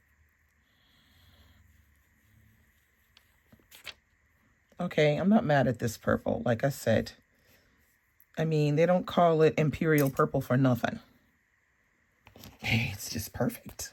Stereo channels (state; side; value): identical; both; correlation 1.00